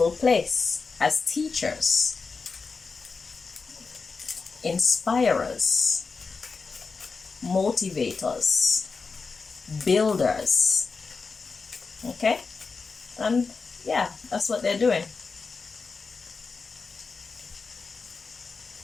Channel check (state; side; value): quieter; right; 4.6 dB